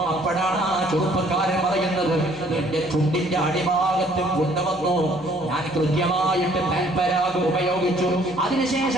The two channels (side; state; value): left; noise; hum, 22 dB below the sound